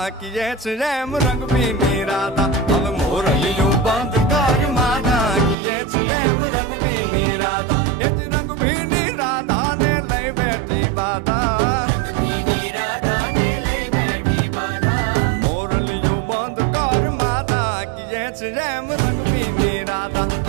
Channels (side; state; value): left; drops out; at 5.6 s